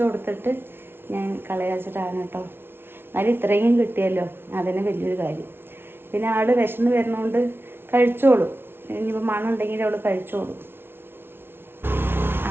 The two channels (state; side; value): late; left; 0.11 ms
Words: കൊടുത്തിട്ട് ഞാൻ കളയാച്ചിട്ടാണ് കേട്ടോ. എന്നാലും ഇത്രയും കിട്ടിയല്ലോ, അതിന് വലിയൊരു കാര്യം. പിന്നെ ആള് വിശന്ന് വരുന്നതുകൊണ്ട് കഴിച്ചോളും. ഇനിയിപ്പോൾ മണം ഉണ്ടെങ്കിൽ അവൾ കഴിച്ചോളും.